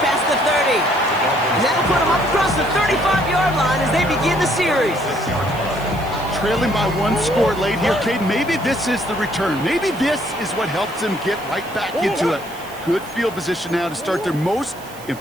past the 30. And that'll put him up across the 35-yard line as they begin the series. Trailing by 1 score late here, Cade. Maybe this is the return. Maybe this is what helps them get right back into it. Good field position now to start their most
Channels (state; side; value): noise; right; hiss, 20 dB below the sound